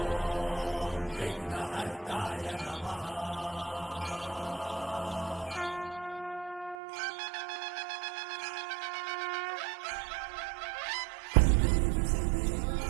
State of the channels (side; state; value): left; drops out; at 6.8 s